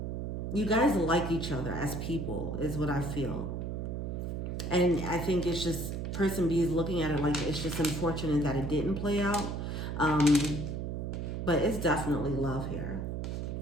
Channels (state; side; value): noise; right; hum, 3 dB below the sound